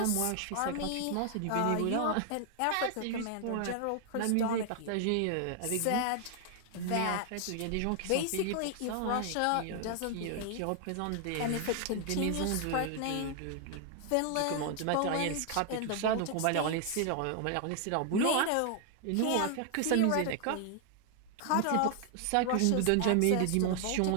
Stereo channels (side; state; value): both; different; correlation 0.00